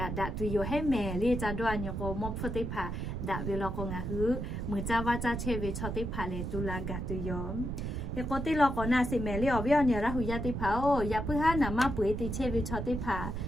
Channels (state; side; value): noise; right; rumble, 4 dB below the sound